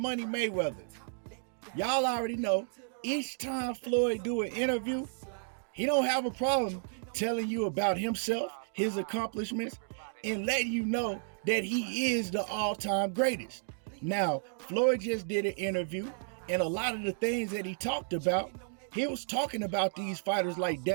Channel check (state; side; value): silent; left; digital silence